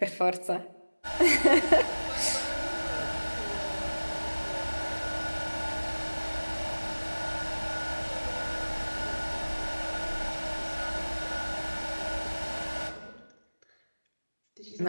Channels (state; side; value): inverted; both; correlation -1.00